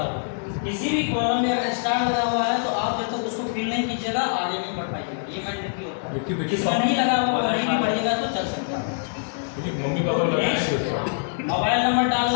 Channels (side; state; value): right; silent; digital silence